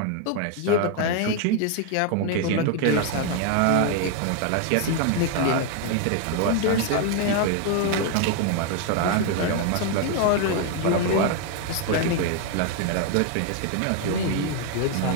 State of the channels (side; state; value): both; different; correlation 0.00